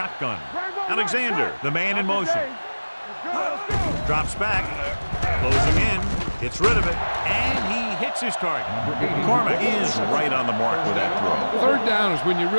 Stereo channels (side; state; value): both; inverted; correlation -1.00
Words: Alexander, the man in motion. Drops back, closing in, gets rid of it, and he hits his target. McCormick is right on the mark with that throw. Third down is when you